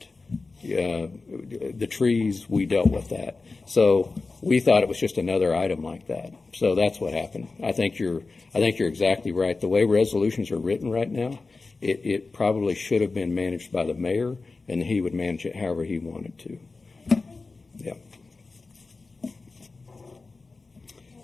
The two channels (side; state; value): right; quieter; 3.9 dB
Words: The trees, we dealt with that. So we thought it was just another item like that. So that's what happened. I think you're exactly right. The way resolutions are written right now, it probably should have been managed by the mayor, and he would manage it however he wanted to. Yeah.